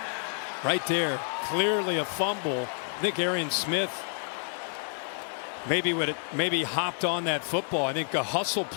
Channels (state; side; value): silent; right; 58 dB below the other